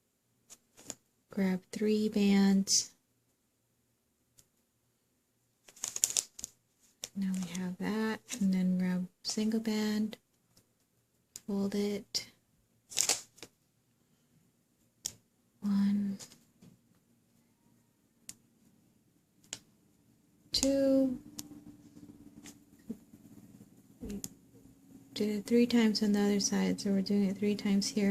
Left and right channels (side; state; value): both; identical; correlation 1.00